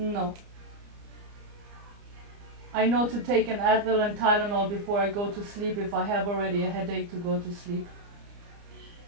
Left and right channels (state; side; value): late; left; 30 ms